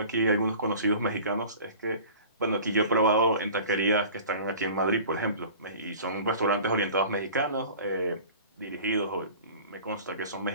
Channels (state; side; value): inverted; both; correlation -0.43